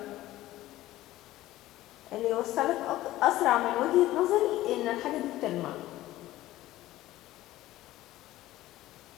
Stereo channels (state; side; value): quieter; right; 15.7 dB